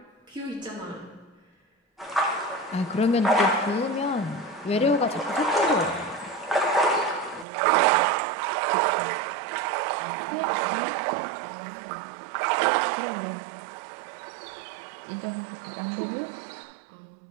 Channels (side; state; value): left; drops out; at 7.5 s